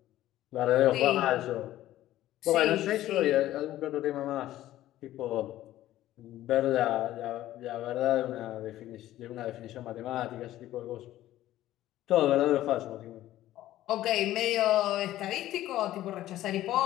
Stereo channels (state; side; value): quieter; right; 14.2 dB